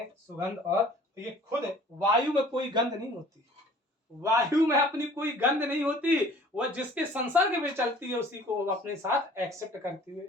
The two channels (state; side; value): normal; both; correlation 0.51